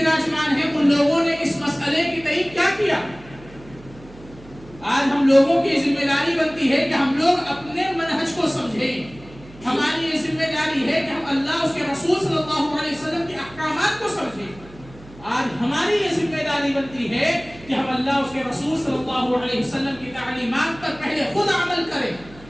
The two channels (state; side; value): noise; right; hum, 21 dB below the sound